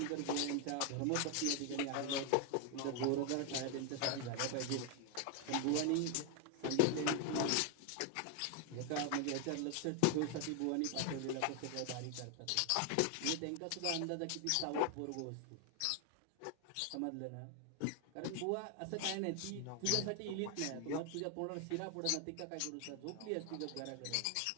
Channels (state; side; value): different; both; correlation 0.01